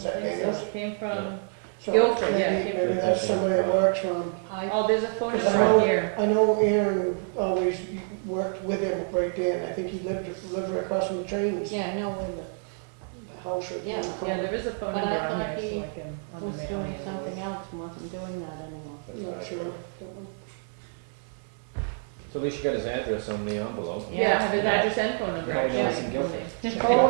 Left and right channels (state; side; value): silent; left; 60 dB below the other